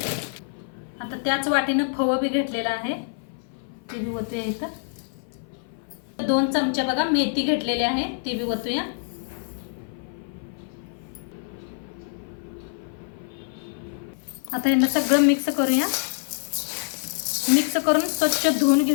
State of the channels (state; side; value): silent; right; 56 dB below the other